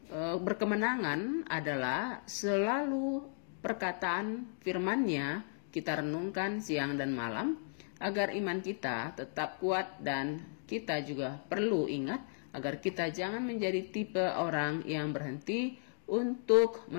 berkemenangan adalah selalu perkataan firman-Nya kita renungkan siang dan malam agar iman kita tetap kuat, dan kita juga perlu ingat agar kita jangan menjadi tipe orang yang berhenti untuk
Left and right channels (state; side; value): silent; right; digital silence